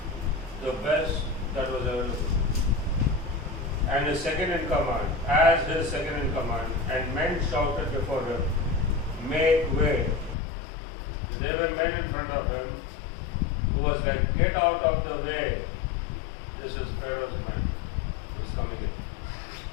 the best that was available. And his second in command, as his second in command, and men shouted before him, make way. The there were men in front of him who was like, get out of the way. This is Pharaoh's man who is coming in.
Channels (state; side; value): drops out; right; at 10.4 s